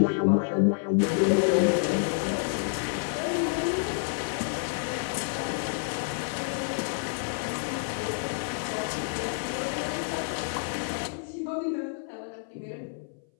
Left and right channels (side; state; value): right; silent; 57 dB below the other